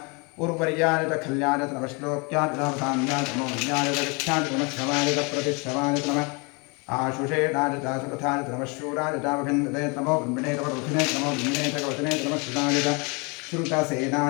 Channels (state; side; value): quieter; right; 30.8 dB